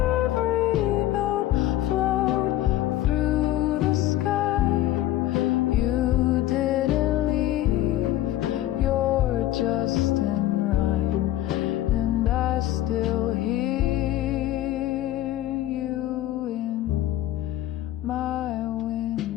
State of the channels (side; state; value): right; quieter; 14.2 dB